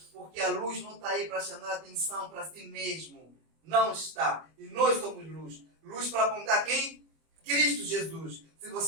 porque a luz não está aí para chamar atenção para si mesmo. Não está. E nós somos luz. Luz para apontar quem? Cristo Jesus. Se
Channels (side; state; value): left; late; 25 ms